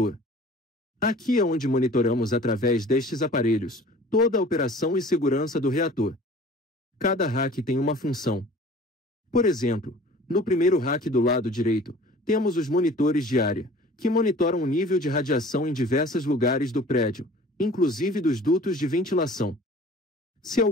Aqui é onde monitoramos através destes aparelhos toda a operação e segurança do reator. Cada rack tem uma função. Por exemplo, no primeiro rack do lado direito, temos os monitores de área, que monitoram o nível de radiação em diversos lugares do prédio, inclusive dos dutos de ventilação. Se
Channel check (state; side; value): normal; both; correlation 0.46